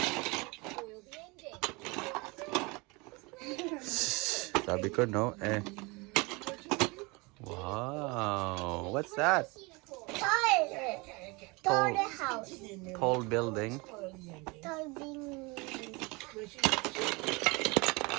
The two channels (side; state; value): left; quieter; 26.7 dB